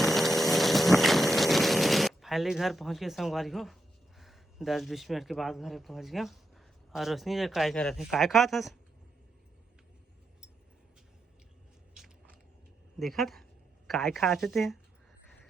फाइनली घर पहुँच गए संगवारी हो, 10-20 मिनट के बाद घर पहुँच गया। और रोशनी जो काय कर रहे थे, काय खा था देखा था काय खाते थे।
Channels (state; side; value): normal; both; correlation 0.84